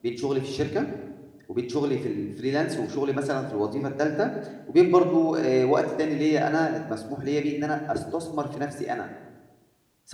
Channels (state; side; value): identical; both; correlation 1.00